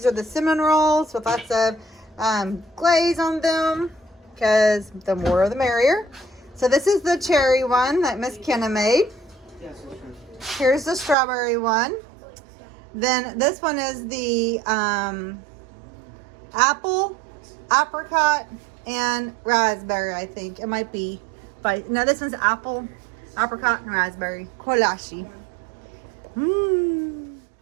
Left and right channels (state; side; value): drops out; left; at 11.2 s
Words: are the cinnamon rolls with lots of glaze on them, because the more the merrier. So this is the cherry one that Miss Kenna made. Here's the strawberry one. Then this one is the apple, apricot, and raspberry, I think. It might be. But no, this one's apple, apricot, and raspberry. Kolache. Mmm.